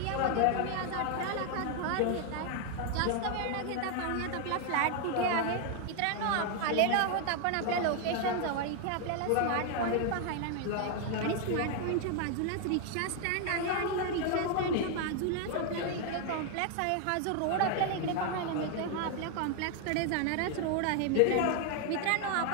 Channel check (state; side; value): different; both; correlation 0.00